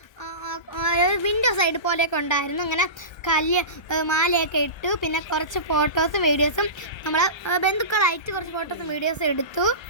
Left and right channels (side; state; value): right; late; 1.3 ms